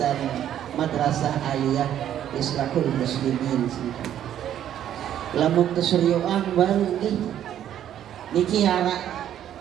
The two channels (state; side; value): quieter; left; 10.7 dB